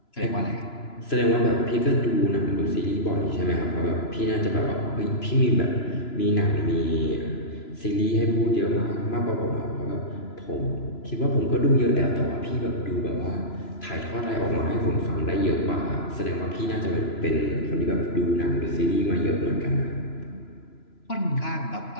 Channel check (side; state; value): right; late; 3.0 ms